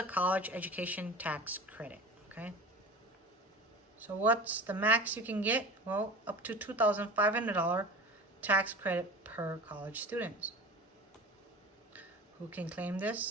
college education tax credit, okay? So what's the max you can get? Well, up to $2,500 tax credit per college student. Who can claim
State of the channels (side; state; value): both; normal; correlation 0.35